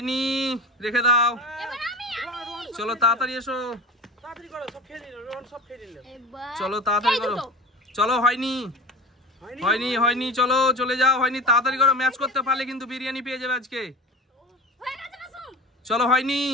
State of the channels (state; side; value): normal; both; correlation 0.32